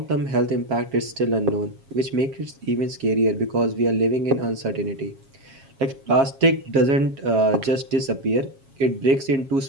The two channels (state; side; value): late; left; 7.4 ms